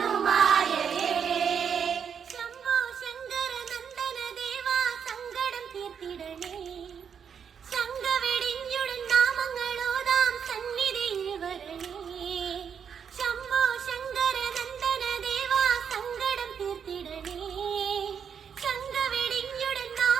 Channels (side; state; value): left; quieter; 7.3 dB